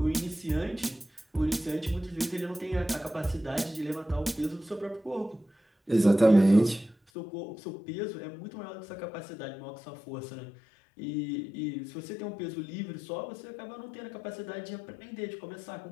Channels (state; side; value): drops out; right; at 7.0 s